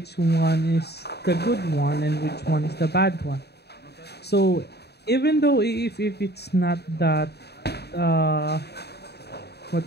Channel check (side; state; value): right; late; 0.48 ms